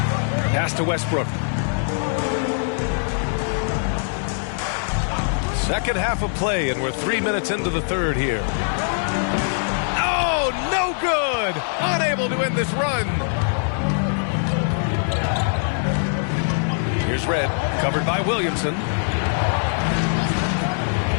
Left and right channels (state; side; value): silent; right; 61 dB below the other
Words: Pass to Westbrook. Second half of play, and we're 3 minutes into the third here. Oh, no good! Unable to end this run. Here's Red, covered by Williamson.